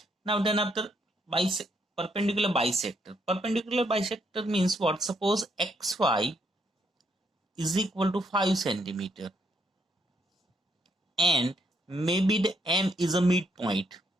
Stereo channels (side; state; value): both; normal; correlation 0.74